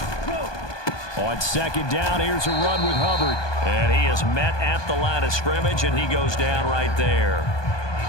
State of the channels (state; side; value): late; right; 1.2 ms